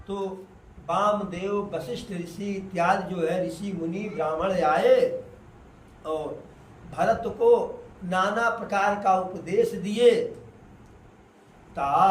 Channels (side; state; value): both; identical; correlation 1.00